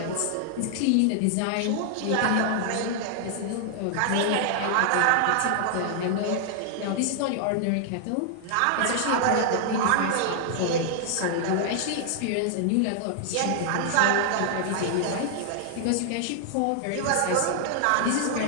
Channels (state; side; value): different; both; correlation 0.00